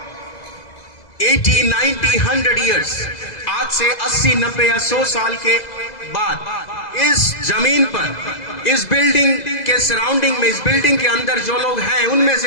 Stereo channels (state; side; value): late; right; 2.0 ms